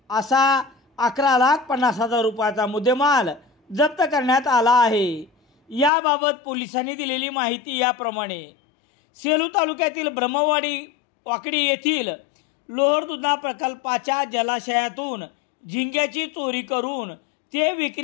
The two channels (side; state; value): right; drops out; at 5.9 s